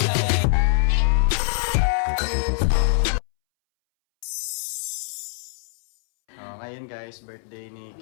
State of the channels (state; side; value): silent; right; 63 dB below the other